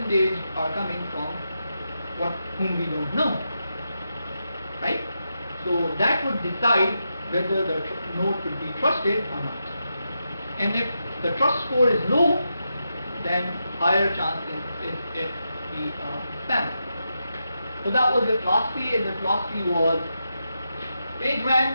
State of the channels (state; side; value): inverted; both; correlation -0.86